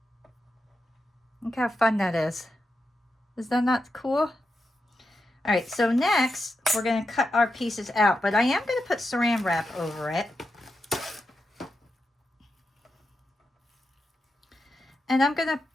Look how fun that is. Is that not cool? All right, so next we're going to cut our pieces out, but I am going to put saran wrap over it. And I'm going to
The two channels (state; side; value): normal; both; correlation 0.87